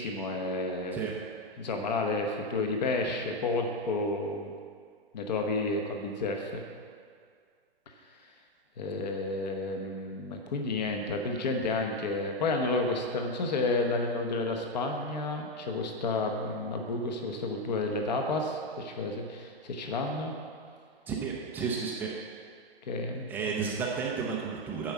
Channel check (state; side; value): normal; both; correlation 0.08